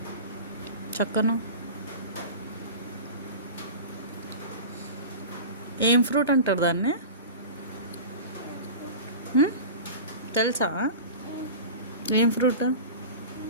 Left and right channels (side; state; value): both; inverted; correlation -0.33